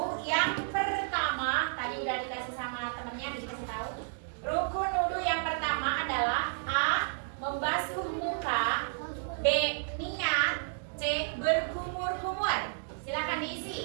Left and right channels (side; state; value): left; silent; digital silence